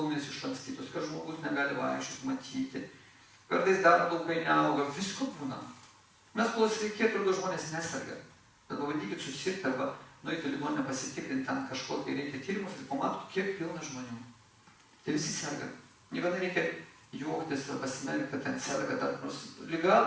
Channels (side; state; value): both; identical; correlation 1.00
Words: išlankstytos, kad žmogus negali vaikščioti, matyti. Kartais dar laukai neauga, visko būna. Mes kol sveiki, atrodo, žmonės neserga. Bet pabandykit susirgti arba nueiti ligoninę pasitikrinti, ten kažko, kai reikia tyrimus ir pamatot, kiek pilna žmonių. Tai visi serga. Niekada reikia juoktis ar pasimerkti, kad ten serga, dar nors liga